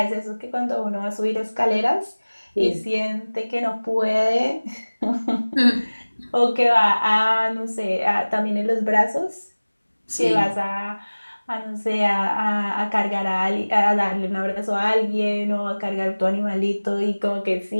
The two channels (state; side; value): inverted; both; correlation -1.00